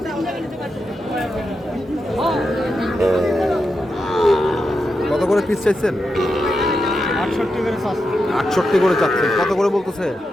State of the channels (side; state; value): both; normal; correlation 0.87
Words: কত করে পিস চাইছেন? 68 করে চাচ্ছেন। কত করে বলতেছে?